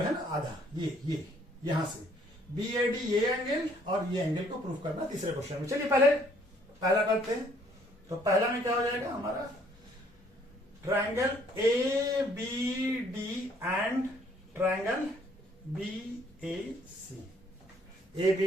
है ना आधा, ये यहां से बी ए डी, ये एंगल और ये एंगल को प्रूफ करना तीसरे क्वेश्चन में। चलिए पहला करते हैं। तो पहला में क्या हो जाएगा हमारा? Triangle A B D and triangle B A C. A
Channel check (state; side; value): normal; both; correlation 0.63